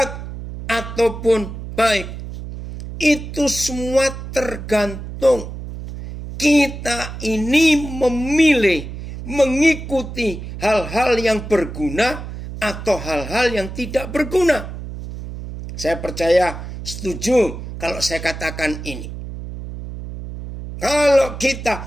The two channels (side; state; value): right; noise; hum, 9 dB below the sound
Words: ataupun baik, itu semua tergantung kita ini memilih mengikuti hal-hal yang berguna atau hal-hal yang tidak berguna. Saya percaya setuju kalau saya katakan ini. Kalau